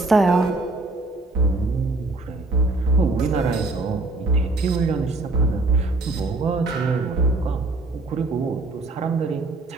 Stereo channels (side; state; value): left; quieter; 3.1 dB